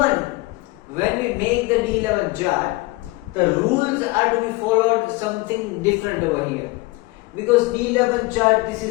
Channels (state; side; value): quieter; right; 22.7 dB